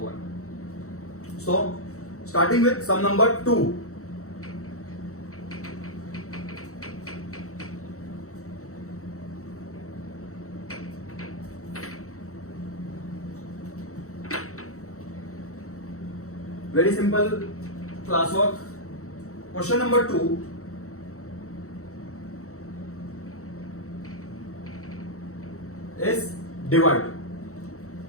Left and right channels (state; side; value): late; right; 0.64 ms